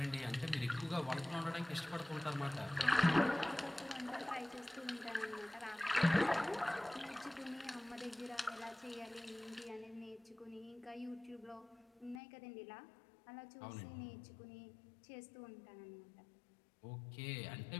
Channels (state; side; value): drops out; right; at 12.2 s